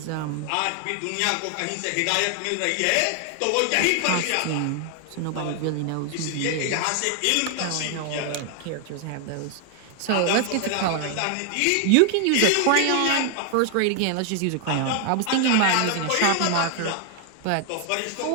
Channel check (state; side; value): different; both; correlation 0.00